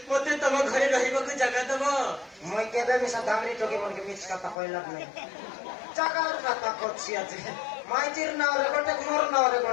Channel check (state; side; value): drops out; right; at 4.5 s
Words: মতে তম ঘরে রহিବାକୁ জায়গা দেব মই কেবে মিছা দামরি টকি মনকে মিছ কথা কইলাম নাই জাগার কথা করছি আছে মাইজির নাওরে গোটে মোর নাওরে